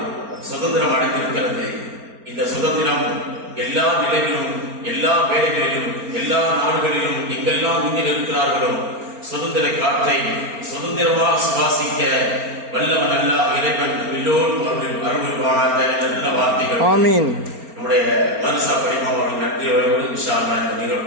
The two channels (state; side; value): late; left; 4.3 ms